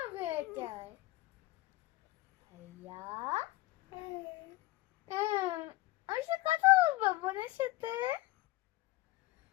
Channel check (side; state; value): right; quieter; 18.3 dB